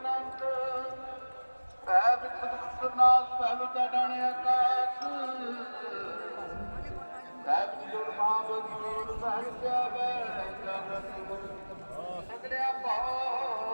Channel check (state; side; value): inverted; both; correlation -1.00